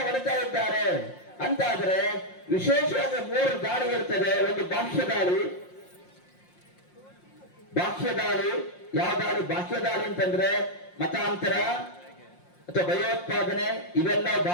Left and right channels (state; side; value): late; right; 5.6 ms